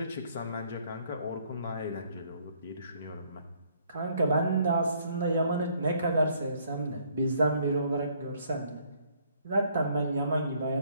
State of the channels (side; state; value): both; inverted; correlation -0.65